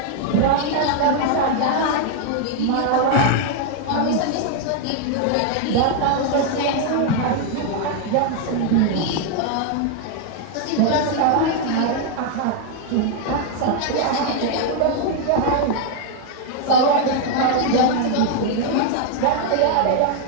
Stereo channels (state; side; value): different; both; correlation 0.00